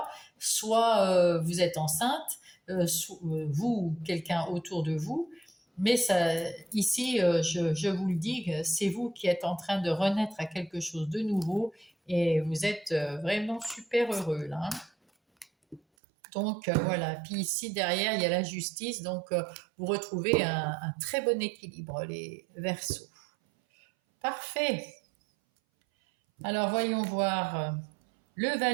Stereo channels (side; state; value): left; drops out; at 15.8 s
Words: soit vous êtes enceinte, vous ou quelqu'un autour de vous. Mais ça, ici, je vous le dis, c'est vous qui êtes en train de renaître à quelque chose de nouveau et vous êtes vraiment super heureux là. Hein. Donc voilà, puis ici derrière il y a la justice, donc vous retrouvez un très bon équilibre les Verseaux. Parfait. Alors voyons voir le